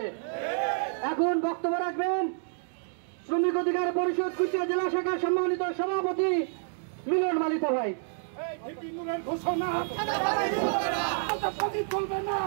এখন বক্তব্য রাখবেন শ্রমিক অধিকার পরিষদ কুষ্টিয়া জেলা শাখার সম্মানিত সভাপতি মিলন মালিত ভাই। ঘোষণা চলবে না,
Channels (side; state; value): left; silent; digital silence